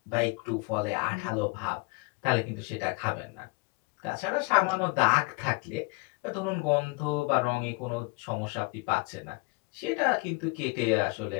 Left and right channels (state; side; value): quieter; right; 27.0 dB